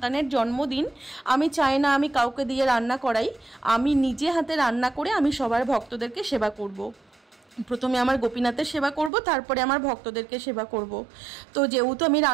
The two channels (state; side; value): drops out; left; at 9.1 s